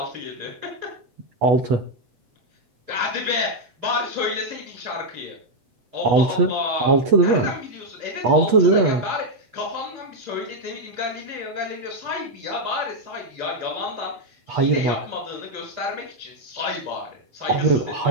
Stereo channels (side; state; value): left; late; 8.3 ms